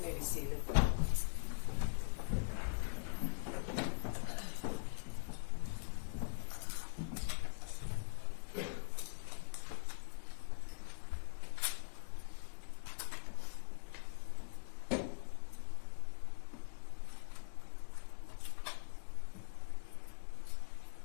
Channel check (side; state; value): right; silent; digital silence